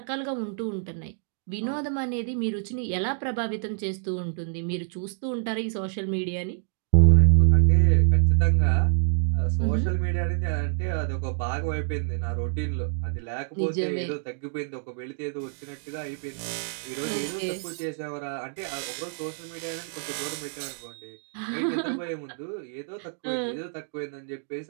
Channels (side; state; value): left; silent; digital silence